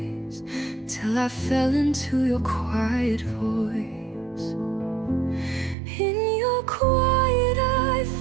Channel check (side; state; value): left; drops out; at 5.8 s